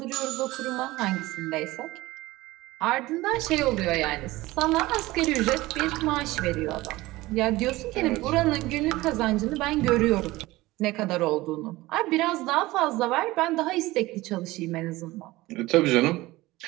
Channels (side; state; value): left; quieter; 19.0 dB